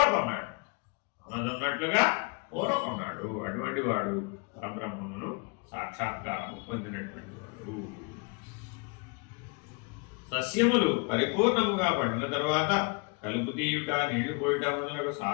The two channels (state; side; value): quieter; right; 32.2 dB